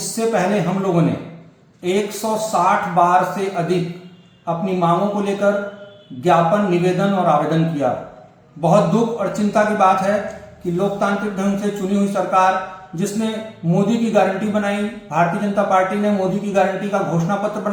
पहले हम लोगों ने 160 बार से अधिक अपनी मांगों को लेकर ज्ञापन, निवेदन और आवेदन किया। बहुत दुख और चिंता की बात है कि लोकतांत्रिक ढंग से चुनी हुई सरकार, जिसने मोदी की गारंटी बनाई, भारतीय जनता पार्टी ने मोदी की गारंटी का घोषणा पत्र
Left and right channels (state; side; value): identical; both; correlation 1.00